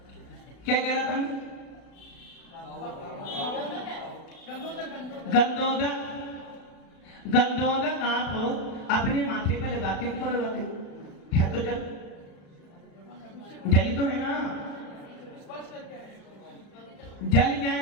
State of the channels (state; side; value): late; right; 36 ms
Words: क्या कह रहा था? गंधोदक आप अपने माथे पे लगाते हो, क्यों लगाते हो? है तो जल, जल तो है ना। जल क्या